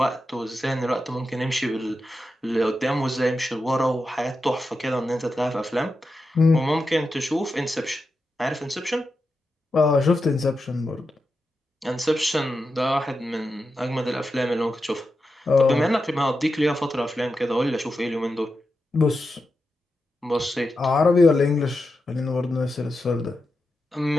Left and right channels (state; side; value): normal; both; correlation 0.89